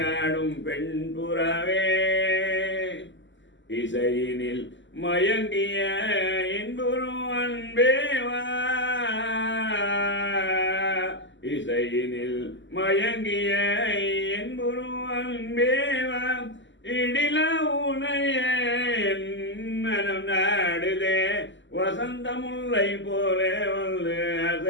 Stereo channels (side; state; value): right; late; 0.54 ms